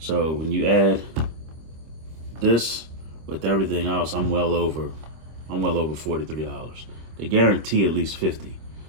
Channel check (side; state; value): left; late; 25 ms